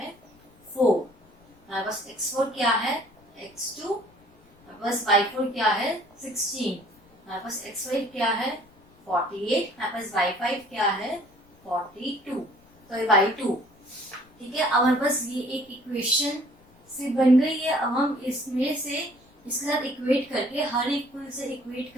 4, हमारे पास x4 क्या है x2, हमारे पास y4 क्या है 16, हमारे पास x5 क्या है 48, हमारे पास y5 क्या है 42, तो ये y2, ठीक है। अब हमारे पास ये एक इक्वेशन से बन गई है। अब हम इसमें से इसके साथ इक्वेट करके, हर एक से इक्वेट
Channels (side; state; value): left; noise; rumble, 29 dB below the sound